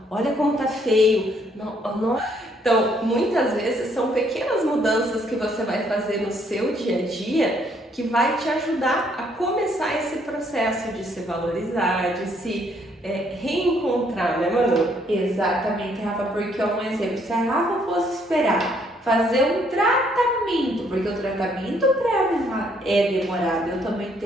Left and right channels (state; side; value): normal; both; correlation 0.68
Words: olha como tá feio. Não. Então, muitas vezes são pequenas mudanças que você vai fazer no seu dia a dia que vai te ajudar a começar esse processo de se valorizar, de se reencontrar, né, Manu? Exatamente, Rafa, porque é um exemplo. Se a Rafa fosse esperar fazer um tratamento, porque o tratamento é demorado, eu também